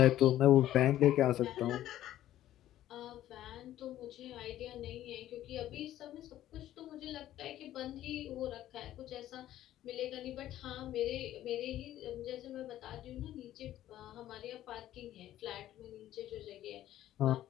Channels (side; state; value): right; quieter; 13.1 dB